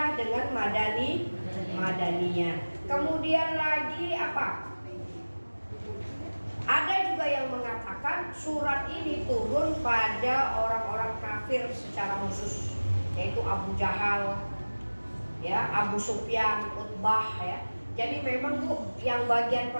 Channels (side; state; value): both; inverted; correlation -1.00